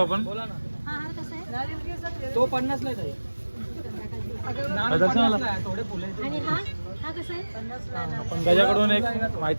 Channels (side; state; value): both; inverted; correlation -1.00